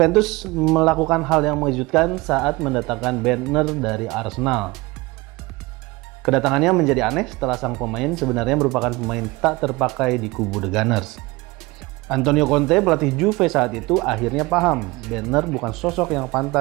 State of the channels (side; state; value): left; quieter; 22.6 dB